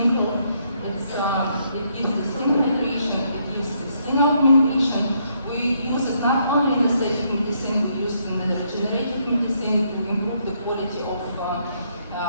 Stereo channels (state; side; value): inverted; both; correlation -0.73